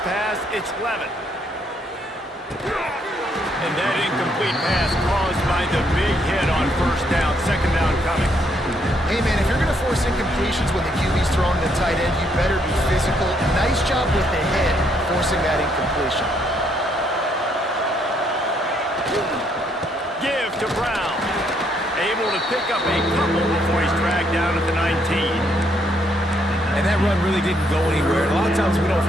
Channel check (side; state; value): both; normal; correlation 0.72